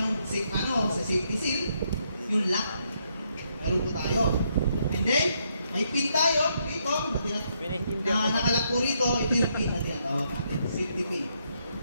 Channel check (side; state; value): both; inverted; correlation -0.76